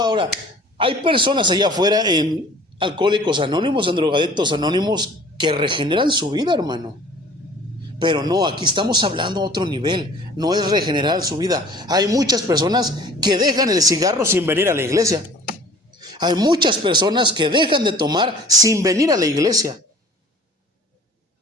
hay personas allá afuera en Alcohólicos Anónimos, en Drogadictos Anónimos, que regeneran su vida, hermano. Pero no, aquí estamos hablando a otro nivel, no es regenerar su vida. Hay muchas personas que dejan el cigarro sin venir a la iglesia. Hay muchas personas que dejan de tomar sin venir a la iglesia.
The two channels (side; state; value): both; normal; correlation 0.48